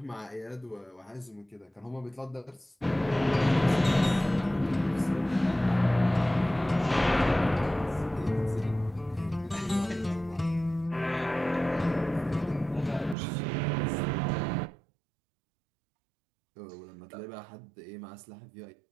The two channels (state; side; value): drops out; left; at 13.2 s